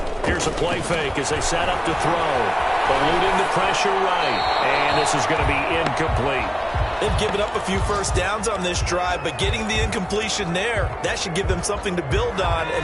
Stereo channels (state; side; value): identical; both; correlation 1.00